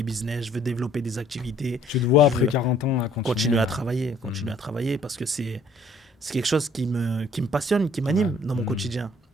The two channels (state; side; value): normal; both; correlation 0.59